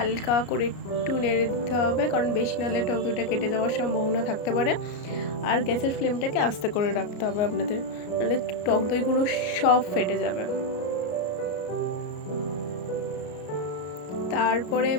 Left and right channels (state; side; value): late; right; 33 ms